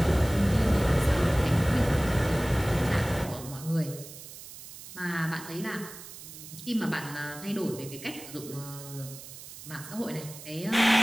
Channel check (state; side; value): noise; right; hiss, 14 dB below the sound